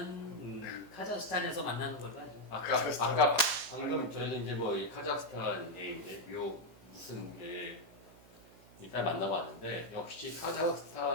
카자흐스탄에서 만나는 걸로 하죠. 아까 방금 저희는 이제 뭐 이 카자흐스탄에 이제 무슨 일단 만나봤는데 역시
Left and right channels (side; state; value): right; noise; hum, 23 dB below the sound